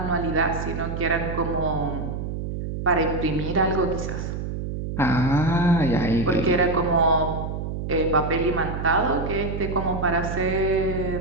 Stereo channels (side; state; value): right; noise; hum, 5 dB below the sound